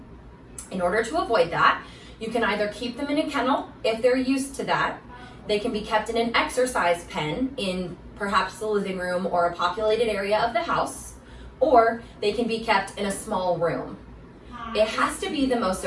In order to avoid that, you can either keep them in a kennel if they're used to that. They can be kept in an exercise pen in perhaps the living room or a populated area of the house, or they can be kept in a small room. It has to be the most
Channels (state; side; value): identical; both; correlation 1.00